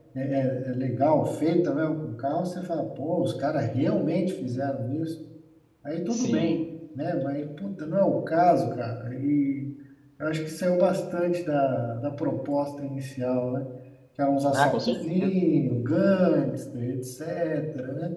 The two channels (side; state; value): both; identical; correlation 1.00